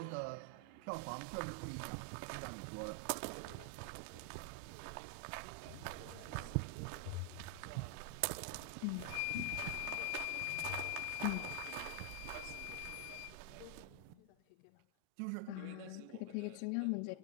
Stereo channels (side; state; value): both; different; correlation 0.00